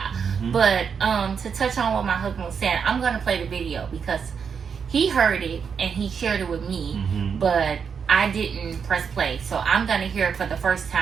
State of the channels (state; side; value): quieter; left; 6.5 dB